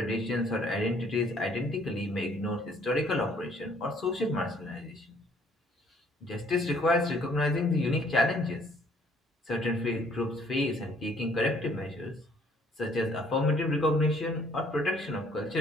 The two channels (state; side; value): normal; both; correlation 0.61